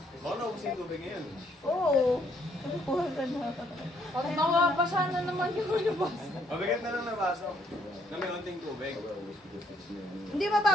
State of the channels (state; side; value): normal; both; correlation 0.69